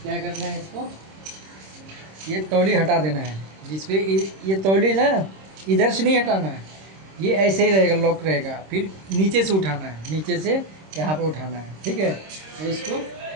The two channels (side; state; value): left; late; 26 ms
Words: क्या करना है, इसको ये तौली हटा देना है। जिसपे ये तौली ना इधर से नहीं हटाना है, ये ऐसे ही रहेगा, लॉक रहेगा। फिर नीचे से उठाना है, नीचे से यहाँ पे उठाना है। ठीक है, तो